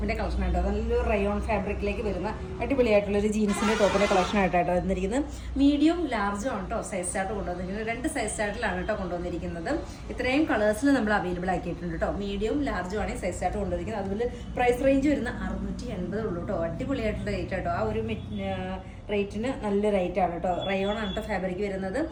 കളക്ഷൻ ആയിട്ടോ. നല്ലൊരു റയോൺ ഫാബ്രിക്കിലേക്ക് വരുന്ന അടിപൊളിയായിട്ടുള്ളൊരു ജീൻസിന്റെ ടോപ്പിന്റെ കളക്ഷൻ ആയിട്ടാട്ടോ വന്നിരിക്കുന്നത്. മീഡിയം ലാർജും ആണ് കേട്ടോ സൈസ് ചാർട്ട് കൊണ്ടുവന്നിരിക്കുന്നത്. 2 സൈസ് ചാർട്ടിലാണ് കേട്ടോ കൊണ്ടുവന്നിരിക്കുന്നത്. ഇത്രയും കളേഴ്സിൽ നമ്മൾ അവൈലബിൾ ആക്കിയിട്ടുണ്ട് കേട്ടോ. മീഡിയം ലാർജും ആണ് സൈസ് ചാർട്ട് കൊണ്ടുവന്നിരിക്കുന്നത്. അതുപോലെ പ്രൈസ് റേഞ്ച് വരുന്ന 680 ഉള്ളൂ കേട്ടോ. അടിപൊളിയായിട്ടുള്ള റേറ്റ് ആട്ടോ. ആ ഒരു റേറ്റിന് നല്ല റേറ്റ് ആണ് കേട്ടോ. റയോൺ ആണ് കേട്ടോ ഫാബ്രിക് വരുന്നത്.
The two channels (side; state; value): both; identical; correlation 1.00